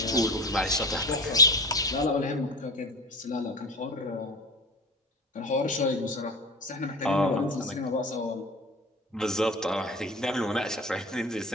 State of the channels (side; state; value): both; normal; correlation 0.32